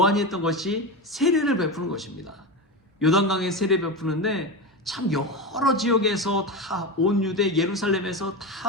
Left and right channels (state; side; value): normal; both; correlation 0.20